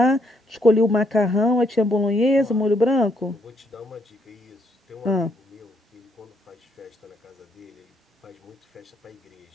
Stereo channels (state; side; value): normal; both; correlation 0.72